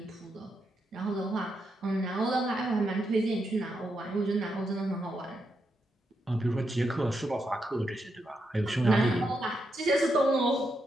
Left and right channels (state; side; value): normal; both; correlation 0.83